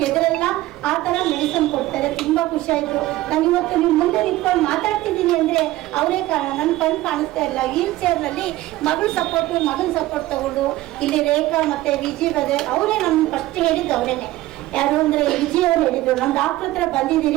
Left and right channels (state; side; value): quieter; left; 16.7 dB